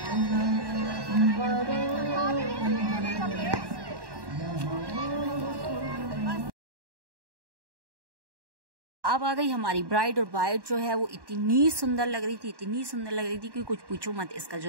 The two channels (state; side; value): late; left; 1.1 ms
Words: अब आ गई हमारी ब्राइड, और ब्राइड जो है वो इतनी सुंदर लग रही थी, इतनी सुंदर लग रही थी कि कुछ पूछो मत। इसका